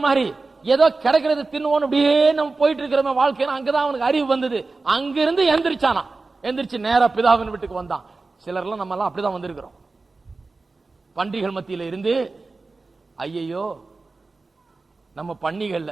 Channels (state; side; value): quieter; left; 3.7 dB